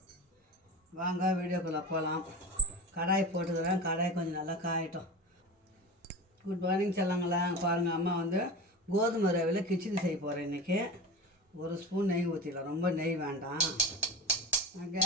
வாங்க வீடியோக்குள்ளே போகலாம். கடாய் போட்டுக்கிறேன். கடாய் கொஞ்சம் நல்லா காயட்டும். குட் மார்னிங் சொல்லுங்களா. பாருங்கள், அம்மா கோதுமை ரவையில் கிச்சடி செய்ய போகிறேன் இன்றைக்கி. ஒரு ஸ்பூன் நெய் ஊற்றிடலாம். ரொம்ப நெய் வேண்டாம்,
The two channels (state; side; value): normal; both; correlation 0.29